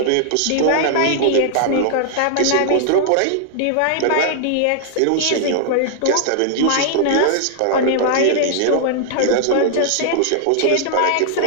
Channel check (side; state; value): both; different; correlation -0.01